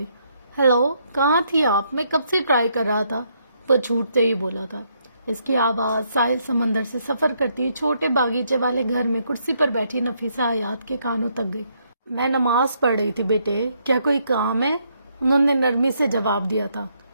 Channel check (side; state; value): both; inverted; correlation -0.74